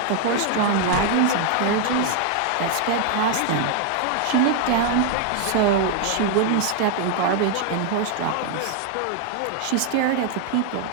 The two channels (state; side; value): different; both; correlation 0.00